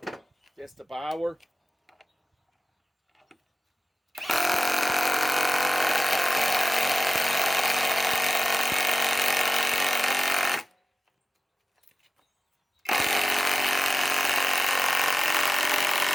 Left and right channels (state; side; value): normal; both; correlation 0.96